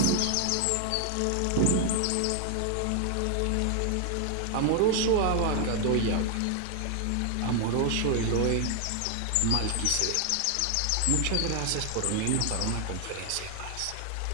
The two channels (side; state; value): both; different; correlation 0.00